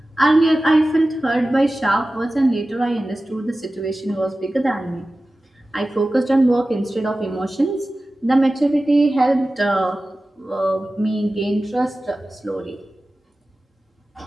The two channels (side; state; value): both; normal; correlation 0.96